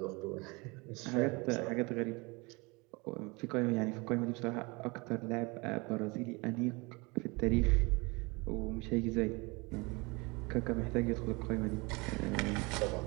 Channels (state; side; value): quieter; left; 26.6 dB